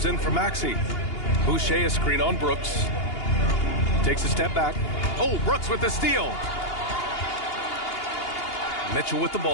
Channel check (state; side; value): late; right; 2.8 ms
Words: in for Maxey. Boucher a screen on Brooks. Takes a step back. Oh, Brooks with the steal. Mitchell with the